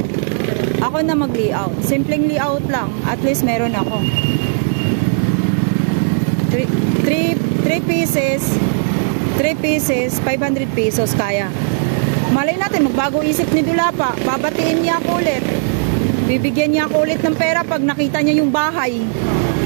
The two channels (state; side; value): silent; left; digital silence